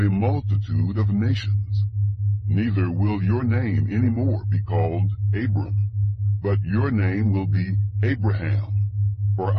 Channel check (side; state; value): both; identical; correlation 1.00